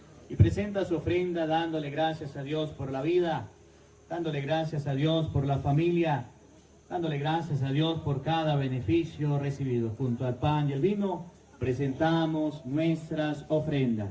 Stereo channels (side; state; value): both; identical; correlation 1.00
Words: y presenta su ofrenda dándole gracias a Dios por la vida, dándole gracias a Dios por la familia, dándole gracias a Dios por cada beneficio recibido. Junto al pan y el vino, presentamos nuestras